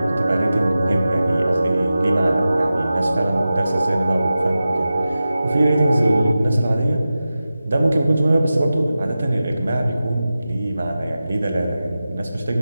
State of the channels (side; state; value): both; inverted; correlation -0.94